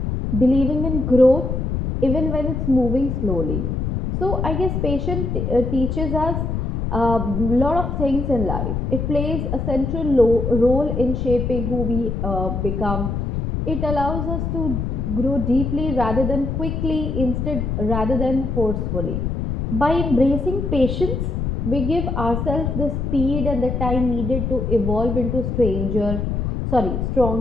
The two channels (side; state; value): left; noise; rumble, 2 dB below the sound